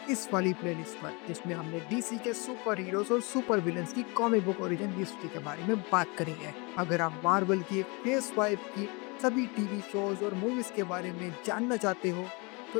इस वाली प्लेलिस्ट पर, जिसमें हमने डीसी के सुपर हीरोज और सुपर विलेंस की कॉमिक बुक ओरिजिन हिस्ट्री के बारे में बात करी है। अगर आप मार्वल की फेज 5 की सभी टीवी शोज और मूवीज के बारे में जानना चाहते हो तो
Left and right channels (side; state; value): right; quieter; 29.0 dB